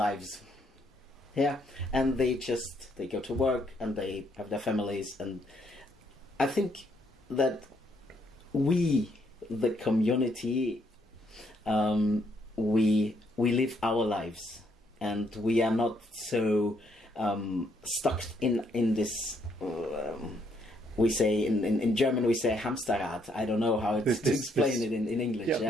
Yeah, and they go to work and they have their families, and I think that we, the community, we live our lives, and we are not so stuck in this. We say in German we say Hamsterrad. I don't know how to explain it in English.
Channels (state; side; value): normal; both; correlation 0.72